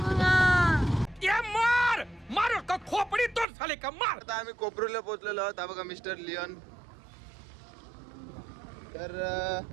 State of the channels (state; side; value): drops out; left; at 3.5 s